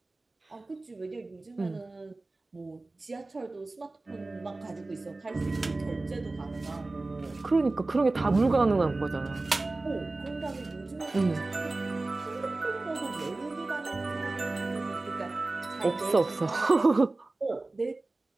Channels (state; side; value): quieter; left; 3.2 dB